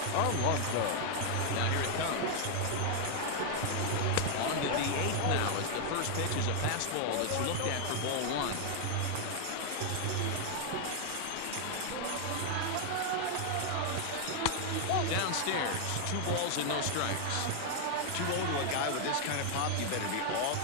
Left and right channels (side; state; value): both; different; correlation 0.00